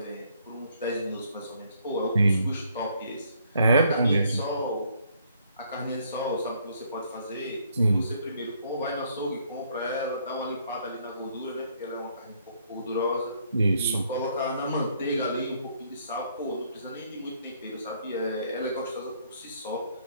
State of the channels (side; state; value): both; inverted; correlation -0.67